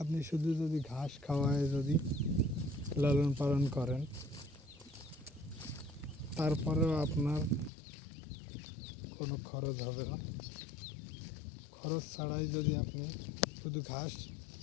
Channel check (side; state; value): right; drops out; at 7.7 s